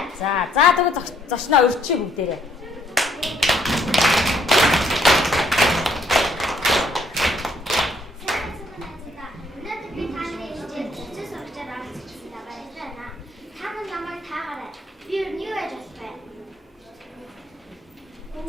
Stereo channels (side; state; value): both; normal; correlation 0.67